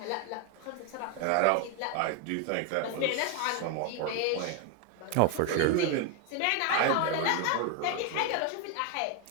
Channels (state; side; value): different; both; correlation 0.01